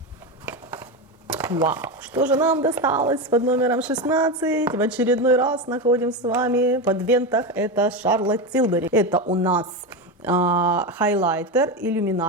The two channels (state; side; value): normal; both; correlation 0.16